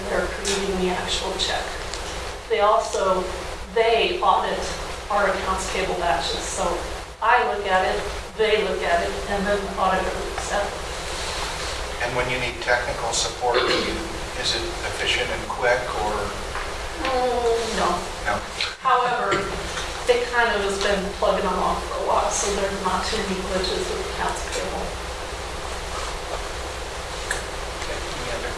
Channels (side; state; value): both; identical; correlation 1.00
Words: they're creating the actual check. They audit our accounts payable batches. So I look at it, they look at it, and then the auditor looks at it. And when you need technical support, is it efficient and quick, or? No. No. However, it kind of has been plugging along for a while, so there's not too many glitches with accounts payable. Okay, any other